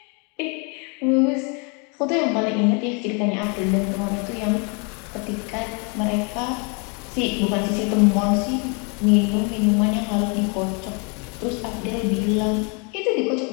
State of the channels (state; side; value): quieter; right; 34.6 dB